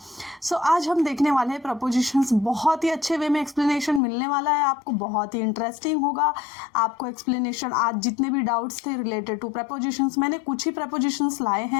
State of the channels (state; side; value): drops out; right; at 4.0 s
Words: सो आज हम देखने वाले हैं प्रपोजिशंस. बहुत ही अच्छे वे में एक्सप्लेनेशन मिलने वाला है आपको, बहुत ही इंटरेस्टिंग होगा आपको एक्सप्लेनेशन. आज जितने भी डाउट्स थे रिलेटेड टू प्रपोजिशंस, मैंने कुछ ही प्रपोजिशंस लाए